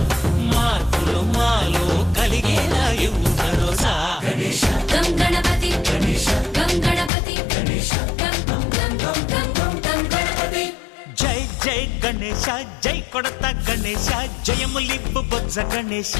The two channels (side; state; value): right; drops out; at 7.1 s